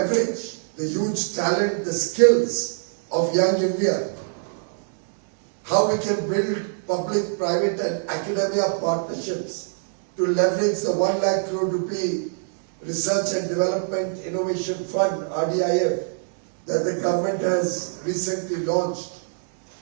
the huge talent, the skills of young India. How we can build public, private and academia partnerships to leverage the 1 lakh crore rupee Research and Development Innovation Fund, RDIF, that the government has recently launched.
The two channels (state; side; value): silent; left; 63 dB below the other